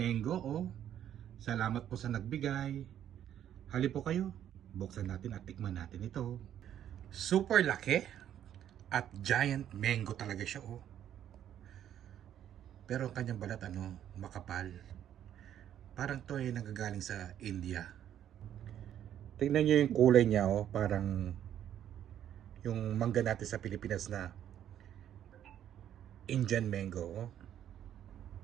oh. Salamat po sa nagbigay. Hali po kayo. Buksan natin at tikman natin ito. Super laki. At giant mango talaga siya, oh. Pero ang kanyang balat, makapal. Parang to ay nagagaling sa India. Tingnan niyo yung kulay niya, oh. Parang yung mangga natin sa Pilipinas na Indian mango, oh.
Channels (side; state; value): left; quieter; 10.5 dB